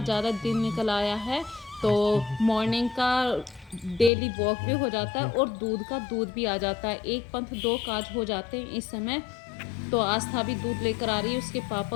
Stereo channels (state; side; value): drops out; right; at 4.1 s